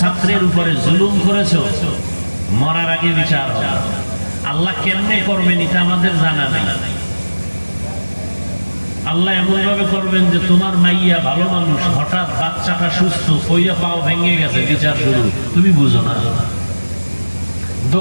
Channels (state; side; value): inverted; both; correlation -1.00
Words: উপরে জুলুম করেছো, মরার আগে বিচার হবে। আল্লাহ কেমনে করবেন এটা আমাদের জানা নেই। আল্লাহ এমন ভাবে করবেন যে তোমার মাইয়া ভালো মানুষ, হঠাৎ বাচ্চাটা সুস্থ, কইয়া পাও ভেঙে গেছে, বিচার শুরু, তুমি বুঝো না।